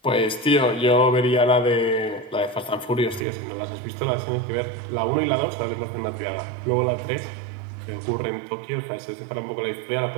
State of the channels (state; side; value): drops out; left; at 3.2 s